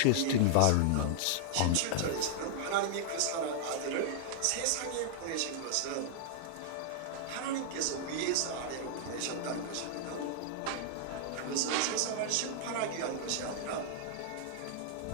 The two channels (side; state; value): both; different; correlation -0.01